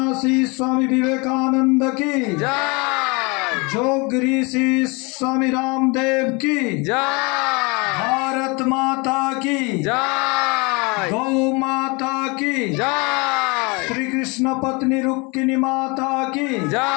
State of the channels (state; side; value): quieter; right; 28.6 dB